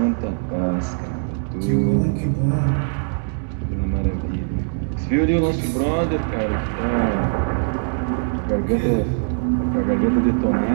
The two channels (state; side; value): silent; left; digital silence